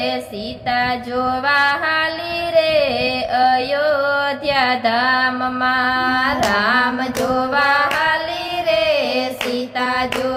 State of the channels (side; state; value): both; identical; correlation 1.00